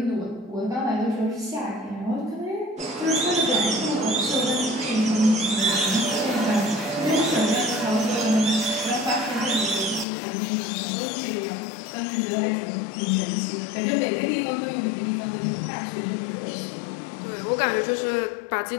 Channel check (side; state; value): right; drops out; at 10.1 s